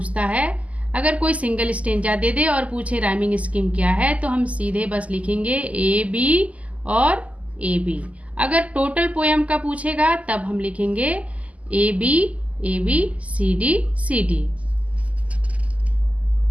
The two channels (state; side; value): late; left; 0.070 ms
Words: है, अगर कोई सिंगल स्टेंजा दे दे और पूछे राइमिंग स्कीम क्या है, तो हम सीधे बस लिखेंगे ए बी और ए बी। अगर टोटल पोएम का पूछेगा तब हम लिखेंगे ए बी सी डी।